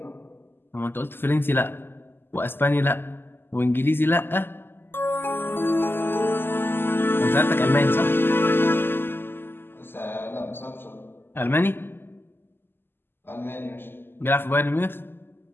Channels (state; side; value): late; right; 0.10 ms